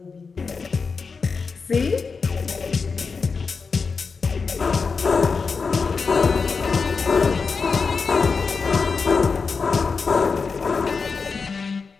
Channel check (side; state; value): right; quieter; 4.9 dB